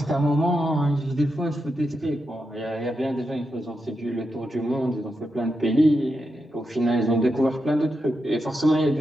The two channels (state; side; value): normal; both; correlation 0.86